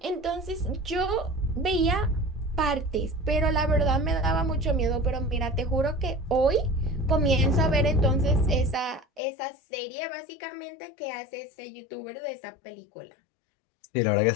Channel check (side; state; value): right; drops out; at 9.2 s